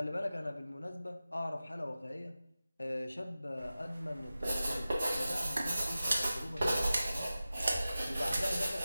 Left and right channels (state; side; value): inverted; both; correlation -0.95